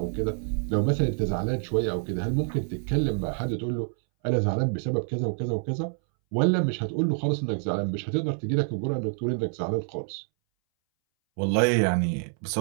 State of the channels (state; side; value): silent; left; 60 dB below the other